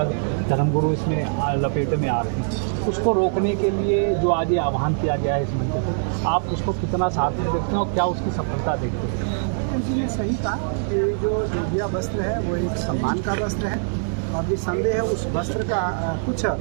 धर्मगुरु इसमें लपेट में आ रहे हैं, उसको रोकने के लिए जो आज ये आह्वान किया गया है इस मंच पर, आप उसको कितना साथ में देखते हैं और क्या उसकी सफलता देखते हैं? इसलिए सही कहा कि जो जोगिया वस्त्र है वो एक सम्मान का वस्त्र है और निसंदेह है उस वस्त्र का कुछ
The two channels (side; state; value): left; silent; digital silence